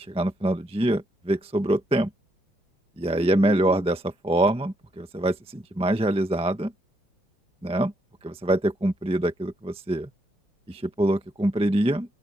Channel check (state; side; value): normal; both; correlation 0.76